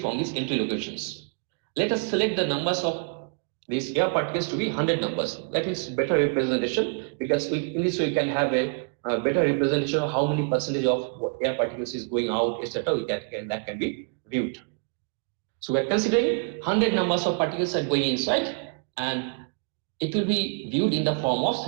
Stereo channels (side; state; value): left; quieter; 37.2 dB